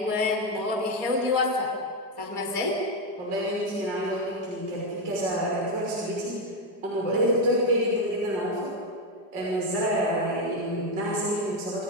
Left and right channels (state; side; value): late; left; 4.9 ms